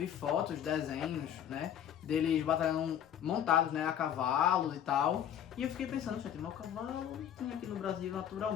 fotos, desenhos, né, deles batalhando montados, né, a cavalos e tal. E eu fiquei pensando, gente, mas o cavalo tem aqui no Brasil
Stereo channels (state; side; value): quieter; right; 9.8 dB